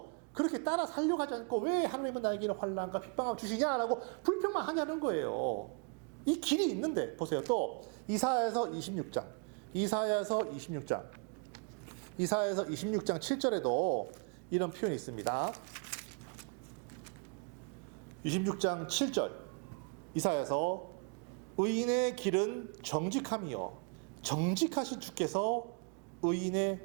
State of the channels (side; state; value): left; quieter; 36.5 dB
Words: 그렇게 따라 살려고 하지 않고 왜 하나님은 나에게 환난과 핍박을 주시냐라고 불평만 하냐는 거예요. 이 길이 있는데, 보세요. 또 이사야서 26장 7절에도 이런 표현이 있습니다. 26장 7절 이사야서, 의인의 길은 정직함이요 정직하신 주께서